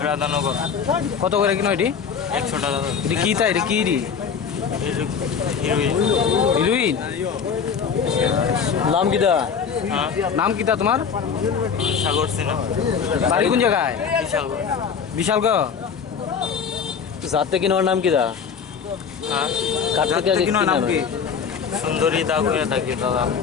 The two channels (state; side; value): quieter; right; 6.6 dB